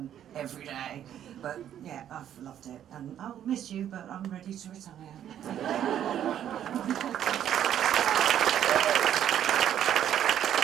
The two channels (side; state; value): left; quieter; 10.4 dB